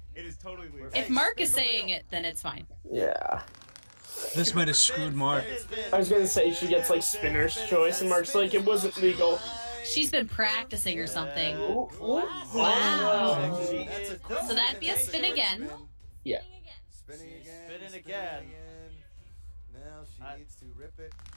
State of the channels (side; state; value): both; inverted; correlation -1.00